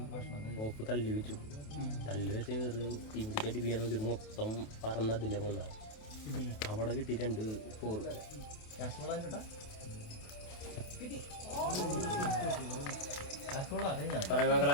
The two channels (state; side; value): late; right; 28 ms